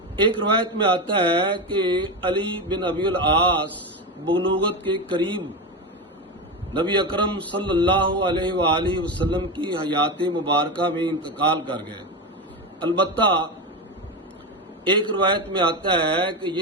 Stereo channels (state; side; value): normal; both; correlation 0.17